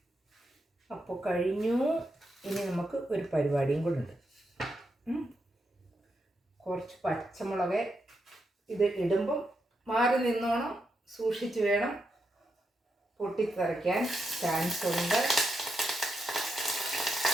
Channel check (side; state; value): both; normal; correlation 0.84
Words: അപ്പോൾ കഴിഞ്ഞു. ഇനി നമുക്ക് ഒരു പരിപാടിയും കൂടെ ഉണ്ട്. കുറച്ച് പച്ചമുളക് ഇത് ഇടുമ്പം മാറി നിന്നോണം, സൂക്ഷിച്ച് വേണം, പൊട്ടിത്തെറിക്കാൻ ചാൻസ് ഉണ്ട്.